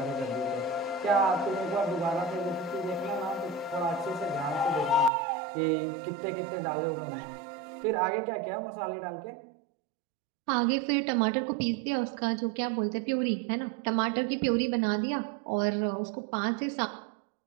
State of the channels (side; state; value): left; drops out; at 5.1 s